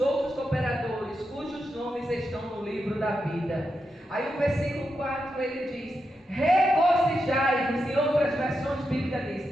cooperadores, cujos nomes estão no livro da vida. Aí o versículo 4 ele diz: regozijai-vos, em outras versões bíblicas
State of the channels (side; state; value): both; normal; correlation 0.86